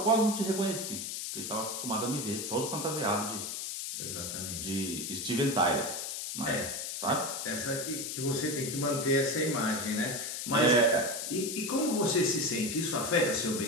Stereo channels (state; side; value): noise; left; hiss, 5 dB below the sound